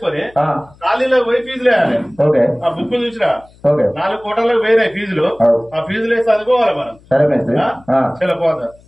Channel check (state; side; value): noise; left; hum, 27 dB below the sound